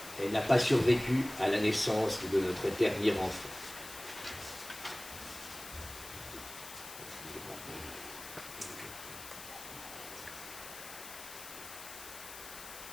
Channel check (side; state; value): left; noise; hiss, 12 dB below the sound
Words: Elle n'a pas survécu à la naissance de notre dernier enfant.